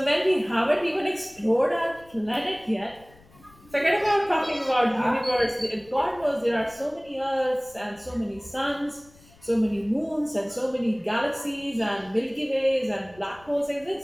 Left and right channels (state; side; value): noise; left; rumble, 26 dB below the sound